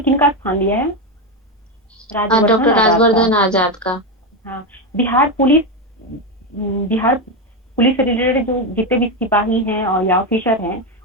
किनका स्थान लिया है? डॉक्टर राजवर्धन आजाद का। हाँ, बिहार पुलिस से रिलेटेड जो जितने भी सिपाही हैं और या ऑफिसर हैं,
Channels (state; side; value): normal; both; correlation 0.11